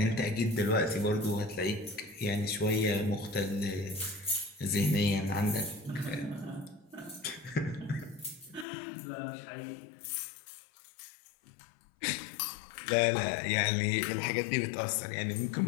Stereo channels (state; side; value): drops out; right; at 8.7 s